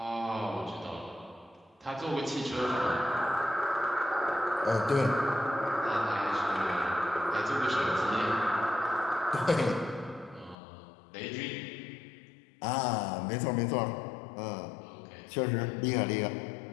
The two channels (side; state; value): right; drops out; at 10.6 s